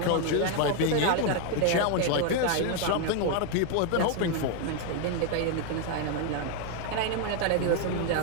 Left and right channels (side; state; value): both; different; correlation 0.01